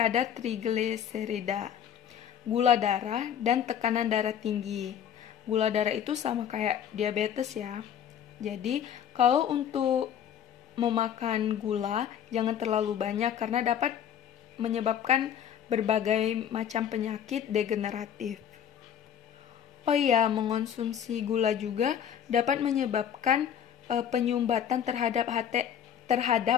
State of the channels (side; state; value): right; quieter; 9.2 dB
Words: trigliserida, gula darah, dan tekanan darah tinggi. Gula darah itu sama kayak diabetes ya. Jadi, kalau untuk memakan gula, jangan terlalu banyak karena dapat menyebabkan berbagai macam penyakit degeneratif. Oh iya, mengonsumsi gula juga dapat menyebabkan penyumbatan terhadap